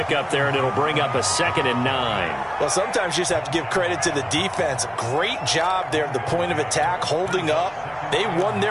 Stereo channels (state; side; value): identical; both; correlation 1.00